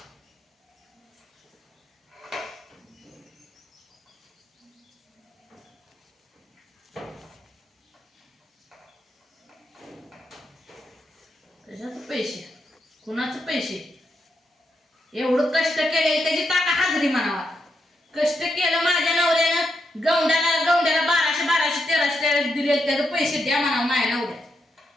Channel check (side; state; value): both; normal; correlation 0.82